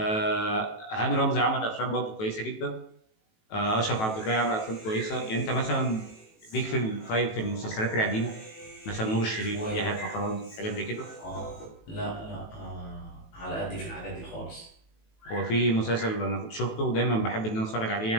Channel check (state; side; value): late; right; 18 ms